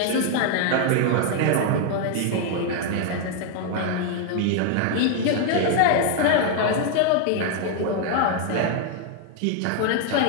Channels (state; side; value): different; both; correlation 0.00